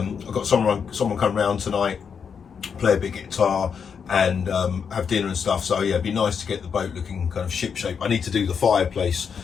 got someone come round tonight, play a bit guitar, and have dinner and stuff. So yeah, it'd be nice to get the boat looking kind of ship shape. I need to do the fireplace,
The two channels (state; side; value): quieter; right; 6.6 dB